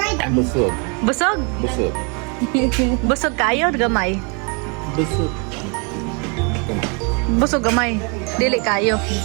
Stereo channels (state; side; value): quieter; left; 34.1 dB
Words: and busog. Busog. Busog. Busog kayo, gamay. Busog. Busog gamay. Dili kayo.